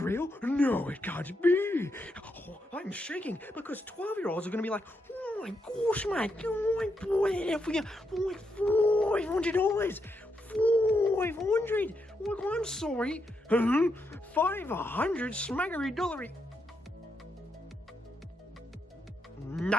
No, it can't be. Oh, I'm shaking because 12-year-olds are going to be like, oh my gosh, mate, oh my boy, for you, $500. 500. Oh, I'm sorry. 500 smackery dollary.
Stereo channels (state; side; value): normal; both; correlation 0.82